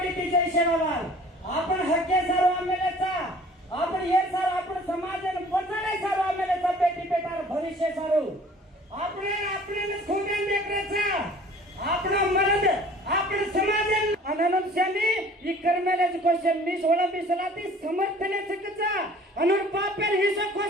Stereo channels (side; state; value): both; normal; correlation 0.50